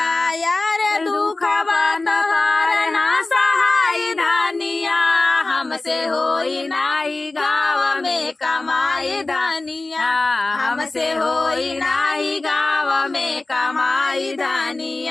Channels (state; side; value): quieter; right; 3.1 dB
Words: यार दुखवा तोहार ना सहाय धानिया हमसे होई नाही गाँव में कमाई धानिया हमसे होई नाही गाँव में कमाई